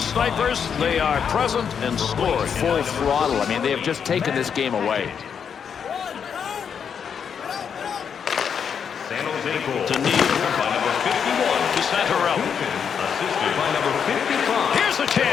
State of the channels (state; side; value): quieter; right; 7.3 dB